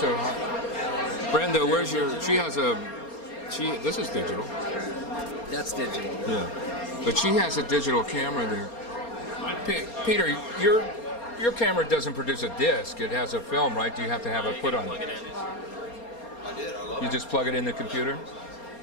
a, Brenda, where's your, she has a, this is digital. That's digital. Yeah. But she has a digital camera there. Peter, your camera doesn't produce a disc. It has a film, right? Do you have to have it put on? Plug it in. You just plug it in the computer?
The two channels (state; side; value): late; right; 4.3 ms